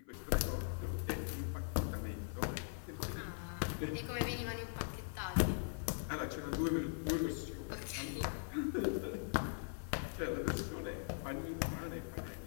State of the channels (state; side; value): silent; right; 50 dB below the other